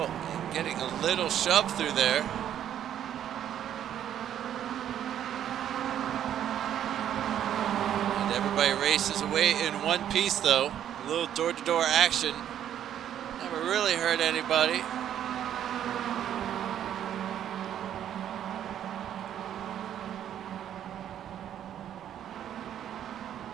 Getting a little shove through there. And everybody races away in one piece though. A little door-to-door action. Never really hurt anybody.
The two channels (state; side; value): quieter; left; 10.4 dB